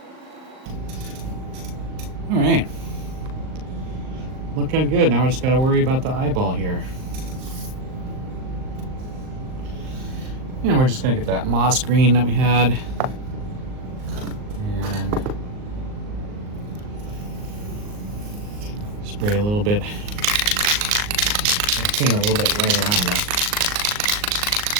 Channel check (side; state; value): left; late; 39 ms